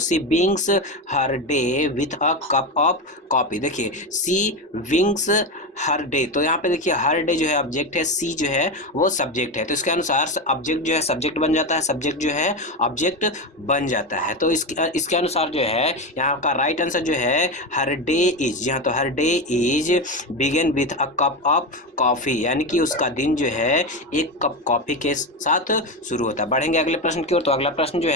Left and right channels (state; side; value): normal; both; correlation 0.16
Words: विंग्स her day with a cup of coffee. देखिए सी विंग्स हर डे, तो यहाँ पे देखिए हर डे जो है ऑब्जेक्ट है, सी जो है वो सब्जेक्ट है, तो इसके अनुसार ऑब्जेक्ट जो है सब्जेक्ट बन जाता है, सब्जेक्ट जो है ऑब्जेक्ट बन जाता है। तो इसके अनुसार जो है यहाँ का राइट आंसर जो है हर डे इज जी हाँ, तो her day is begin with a cup of coffee, यानी कि उसका दिन जो है एक कप कॉफी के साथ शुरू होता है। बढ़ेंगे अगले प्रश्न की ओर। तो अगला प्रश्न जो